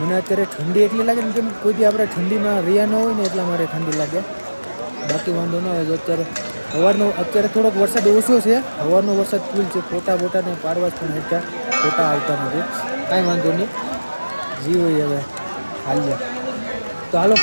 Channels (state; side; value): inverted; both; correlation -1.00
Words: અત્યારે ઠંડી એટલી લાગે ને કેમ કોઈ દી આપણે ઠંડીમાં રહ્યા ન હોય ને એટલા મારે ઠંડી લાગે, બાકી વાંધો ન હોય. અત્યારે સવારનો અત્યારે થોડોક વરસાદ ઓછો છે, સવારનો વરસાદ ફૂલ છે. ફોટા બોટાને પાડવા પણ હેઠા ફોટા આવતા નથી, કાંઈ વાંધો નહીં, જી હોય હવે હાલ્યા. તો હાલો